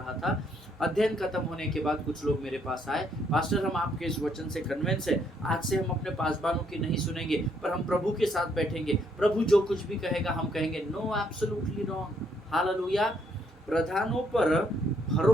था। अध्ययन खत्म होने के बाद कुछ लोग मेरे पास आए, पास्टर हम आपके इस वचन से कन्विंस है, आज से हम अपने पासबानों की नहीं सुनेंगे पर हम प्रभु के साथ बैठेंगे, प्रभु जो कुछ भी कहेगा हम कहेंगे। No, absolutely wrong. हालेलुया। प्रधानों पर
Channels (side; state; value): both; normal; correlation 0.71